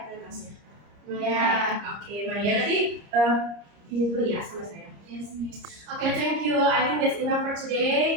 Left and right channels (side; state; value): left; late; 30 ms